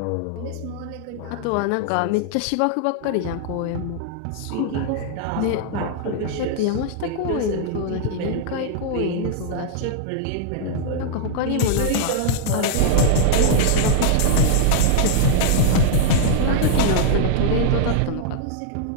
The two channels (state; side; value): different; both; correlation -0.01